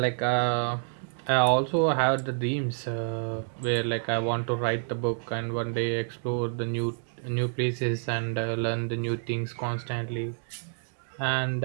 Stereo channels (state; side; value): silent; left; 59 dB below the other